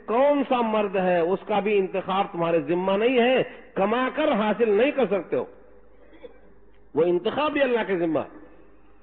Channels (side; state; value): both; identical; correlation 1.00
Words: کون سا مرد ہے اس کا بھی انتخاب تمہارے ذمہ نہیں ہے، کما کر حاصل نہیں کر سکتے ہو، وہ انتخاب بھی اللہ کے ذمہ.